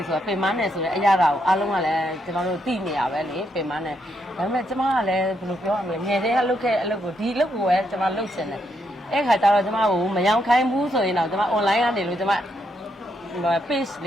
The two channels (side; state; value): both; normal; correlation 0.78